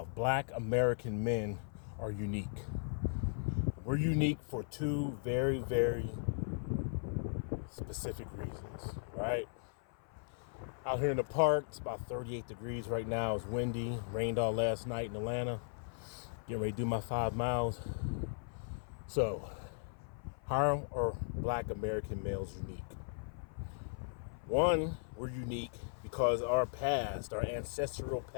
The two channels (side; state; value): right; silent; 53 dB below the other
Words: Black American men are unique. We're unique for two very, very specific reasons, right? Out here in the park, it's about 38 degrees right now. It's windy, rained all last night in Atlanta. Getting ready to do my 5 miles. So, how are Black American males unique? One, we're unique because our past, our ancestral